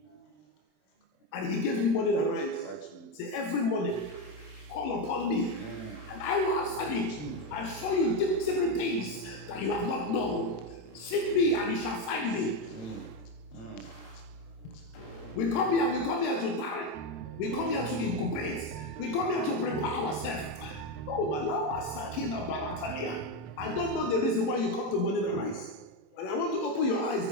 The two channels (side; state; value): right; late; 27 ms